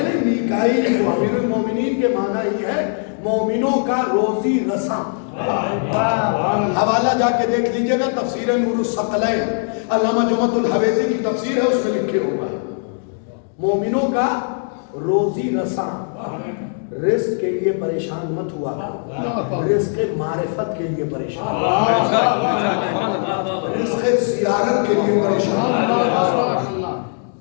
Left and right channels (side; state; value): right; silent; 66 dB below the other